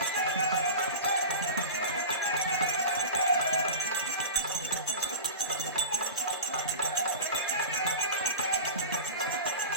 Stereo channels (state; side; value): inverted; both; correlation -0.30